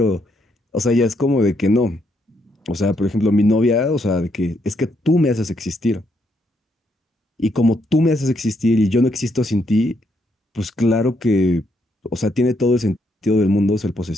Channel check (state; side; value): normal; both; correlation 0.76